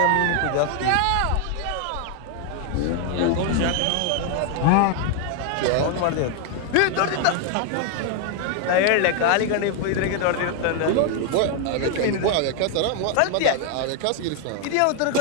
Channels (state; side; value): different; both; correlation 0.01